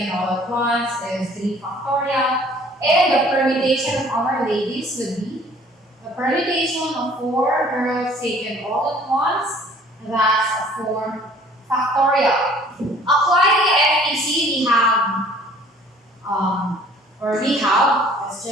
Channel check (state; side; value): normal; both; correlation 0.54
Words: all at once is 3 factorial. And the permutation of our ladies would be the permutation of 4 girls taken all at once, that's 4 factorial. Applying the FPC, let's